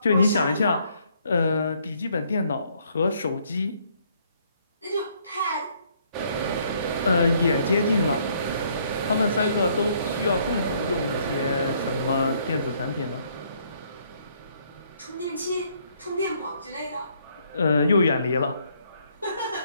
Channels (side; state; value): both; inverted; correlation -0.67